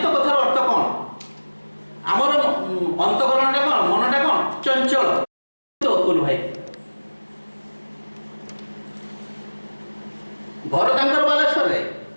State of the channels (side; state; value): both; inverted; correlation -1.00